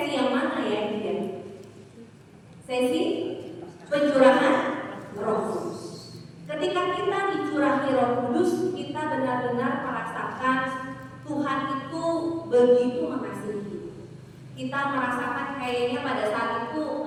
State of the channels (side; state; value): both; identical; correlation 1.00